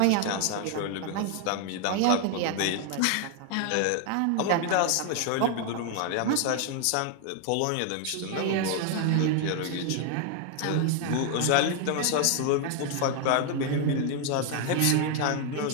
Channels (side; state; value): both; different; correlation 0.00